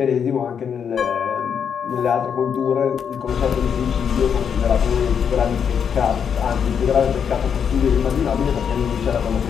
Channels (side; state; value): right; quieter; 7.4 dB